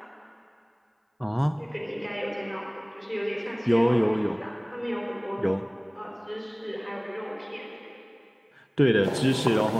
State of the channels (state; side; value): identical; both; correlation 1.00